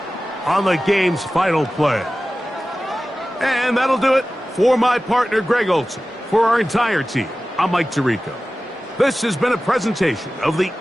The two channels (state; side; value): normal; both; correlation 0.95